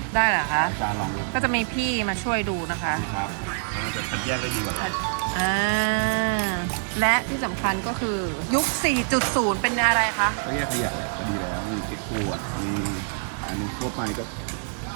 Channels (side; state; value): left; silent; digital silence